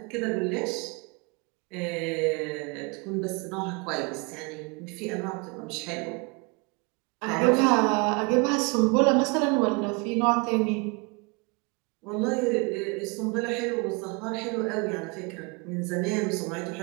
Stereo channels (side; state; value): left; quieter; 30.4 dB